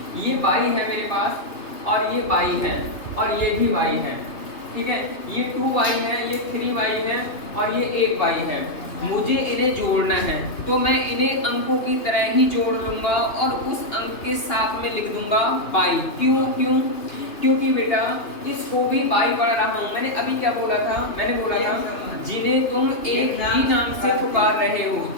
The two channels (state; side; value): late; right; 2.8 ms